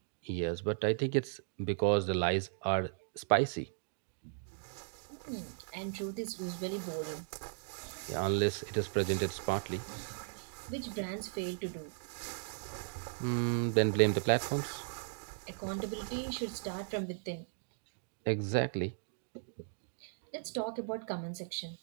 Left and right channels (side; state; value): left; silent; digital silence